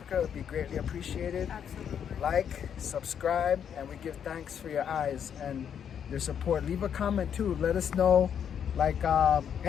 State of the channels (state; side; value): quieter; right; 8.3 dB